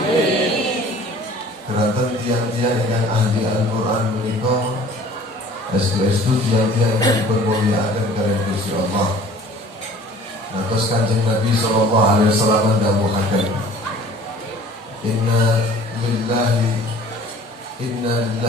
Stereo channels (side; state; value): both; normal; correlation 0.49